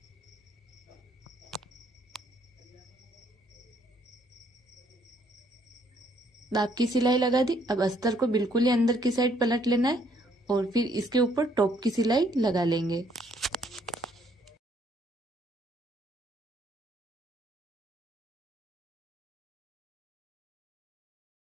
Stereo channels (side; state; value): both; normal; correlation 0.67